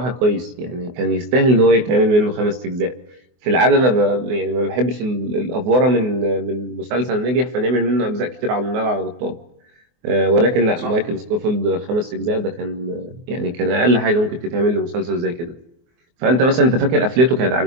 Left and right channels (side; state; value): left; late; 24 ms